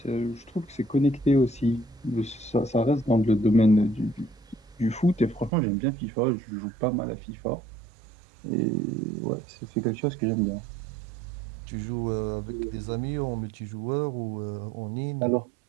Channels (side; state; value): left; drops out; at 5.5 s